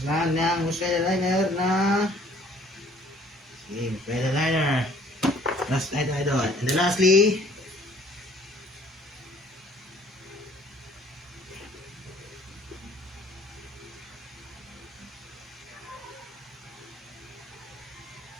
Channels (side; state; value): both; normal; correlation 0.57